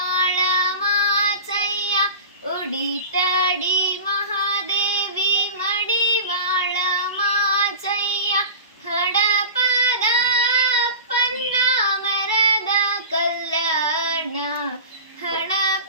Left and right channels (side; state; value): both; inverted; correlation -0.34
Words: ಮಾಚಯ್ಯ, ಉಡಿತಡಿ ಮಹಾದೇವಿ ಮಡಿವಾಳ ಮಾಚಯ್ಯ, ಹಡಪದ ಅಪ್ಪನ್ನ ಮರದ ಕಲ್ಯಾಣ,